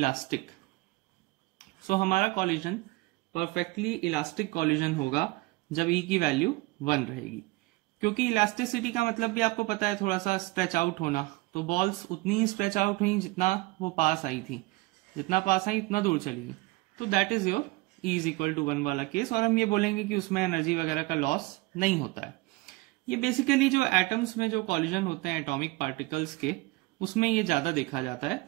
सो हमारा कॉलिजन परफेक्टली इलास्टिक कॉलिजन होगा जब ई की वैल्यू 1 रहेगी, क्योंकि इलास्टिसिटी का मतलब भी आपको पता है थोड़ा सा स्ट्रेच आउट होना। तो बॉल्स उतनी ही स्ट्रेच आउट हुई जितना वो पास आई थी, जितना पास आई उतना दूर चली गई। तो that is your E is equal to 1 वाला केस, और हम ये बोलेंगे कि उसमें एनर्जी वगैरह का लॉस नहीं होता है। ये बेसिकली जो एटम्स में जो कॉलिजन होते हैं एटॉमिक पार्टिकल्स के, उसमें ये ज्यादा देखा जाता है।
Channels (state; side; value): quieter; left; 21.5 dB